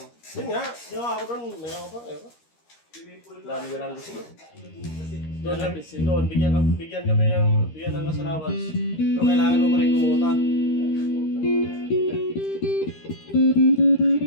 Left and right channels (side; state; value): right; late; 13 ms